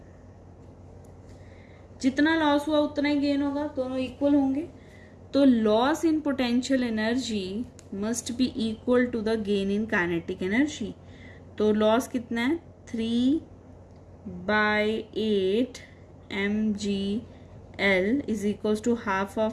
जितना लॉस हुआ उतना ही गेन होगा, दोनों इक्वल होंगे। तो loss in potential energy must be equal to the gain in kinetic energy. तो लॉस कितना है, 3/8 mgl is equals to half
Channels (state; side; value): identical; both; correlation 1.00